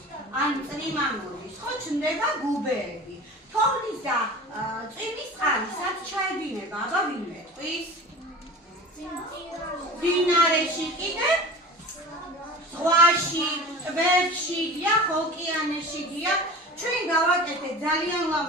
ან წრიმა მოდის, ხო ჩნდება გუბეები. თოვლის და წვიმის წყალი სად ჩაედინება, აბა ვინ მეტყვის? მდინარეში კიდევ? ზღვაში, ტბებში, დიახ, ოკეანეში, დიახ. ჩვენ გავაკეთეთ ძალიან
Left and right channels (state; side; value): normal; both; correlation 0.37